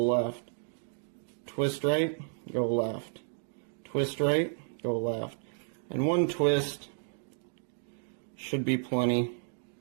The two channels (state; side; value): silent; left; digital silence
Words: Twist right, go left. Twist right, go left. And one twist should be plenty.